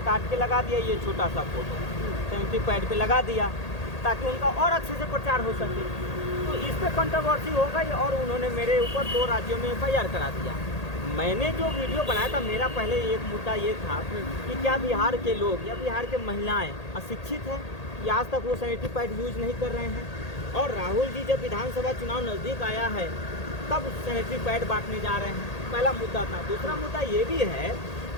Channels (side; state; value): right; late; 1.8 ms